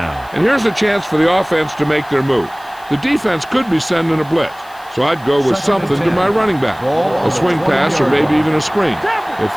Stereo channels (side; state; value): left; noise; hiss, 25 dB below the sound